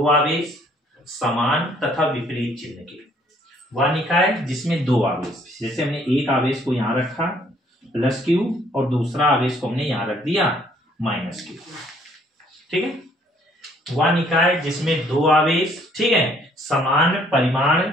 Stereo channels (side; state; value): both; normal; correlation 0.62